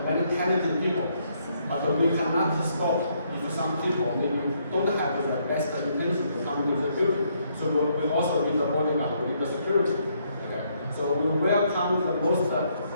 many talented people, but we cannot stop if some people maybe don't have the best intention to come into the building. So we also need the bodyguard, we need the security. Okay? So we welcome the most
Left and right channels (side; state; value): both; inverted; correlation -0.72